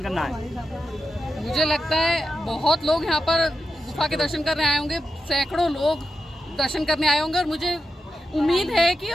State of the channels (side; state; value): both; normal; correlation 0.89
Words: करना है? मुझे लगता है बहुत लोग यहाँ पर गुफा के दर्शन करने आए होंगे, सैकड़ों लोग दर्शन करने आए होंगे, और मुझे उम्मीद है कि